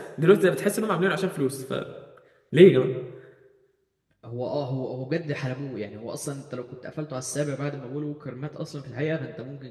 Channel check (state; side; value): identical; both; correlation 1.00